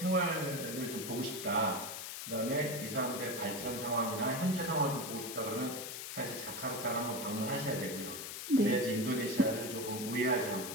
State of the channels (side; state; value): left; noise; hiss, 7 dB below the sound